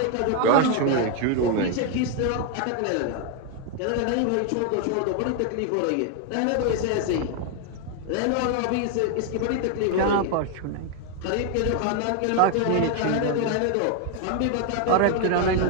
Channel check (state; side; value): different; both; correlation 0.01